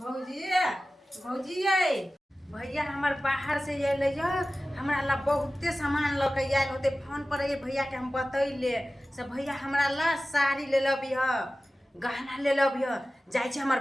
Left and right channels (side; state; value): both; normal; correlation 0.96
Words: भौजी ये भैया हमर बाहर से अइले ज हमरा ला बहुते सामान ल के आइल होते फोन पर ये भैया के हम बतैले से भैया हमरा ला साड़ी ले लबी ह गहना ले लबी ह जाय छै हमर